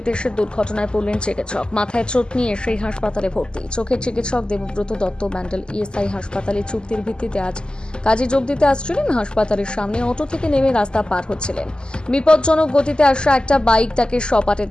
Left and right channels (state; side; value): late; right; 0.048 ms